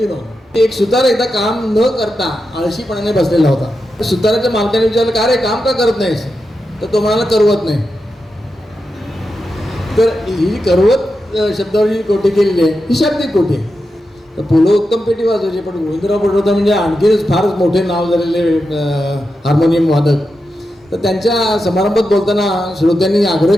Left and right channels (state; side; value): normal; both; correlation 0.89